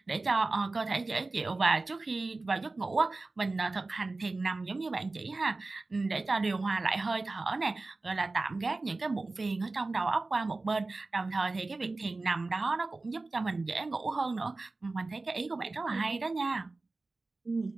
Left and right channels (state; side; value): quieter; left; 3.4 dB